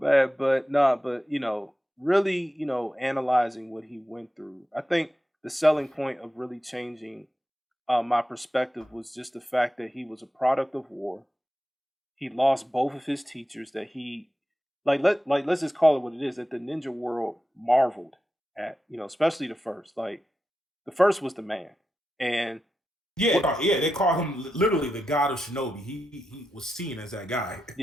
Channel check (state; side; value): normal; both; correlation 0.90